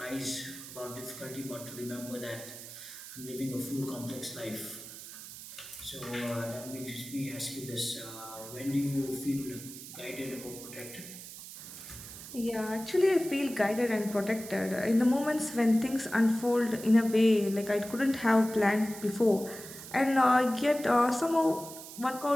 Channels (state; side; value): noise; right; hiss, 13 dB below the sound